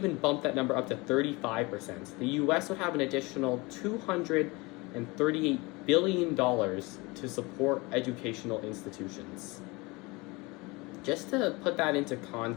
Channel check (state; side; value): quieter; right; 24.7 dB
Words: bump that number up to 35%, the US would have an additional $238 billion to support educational institutions. Just to put that into